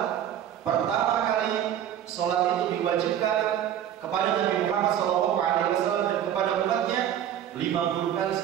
Pertama kali sholat itu diwajibkan kepada Nabi Muhammad SAW dan kepada umatnya 50 kali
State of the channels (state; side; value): quieter; left; 10.4 dB